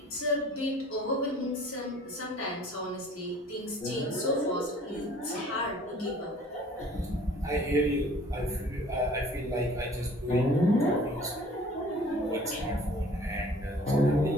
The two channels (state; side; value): normal; both; correlation 0.51